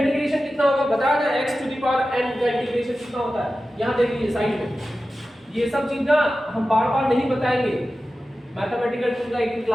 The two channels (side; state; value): both; normal; correlation 0.94